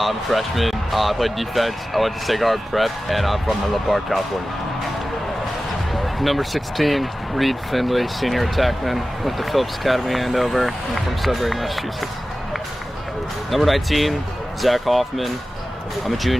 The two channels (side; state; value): both; normal; correlation 0.95